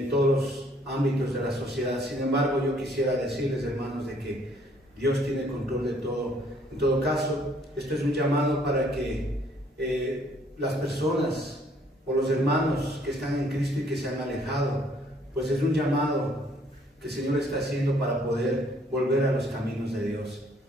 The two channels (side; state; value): both; normal; correlation 0.63